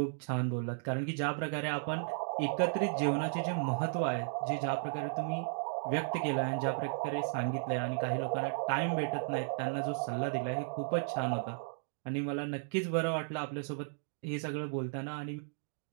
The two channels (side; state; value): left; silent; digital silence